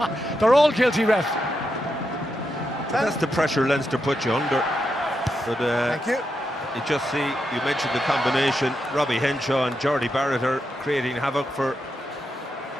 They're all guilty, ref. That's the pressure Leinster put you under. But Thank you. you just see, you mentioned the combination, Robbie Henshaw and Jordy Barrett are creating havoc for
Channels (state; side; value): normal; both; correlation 0.85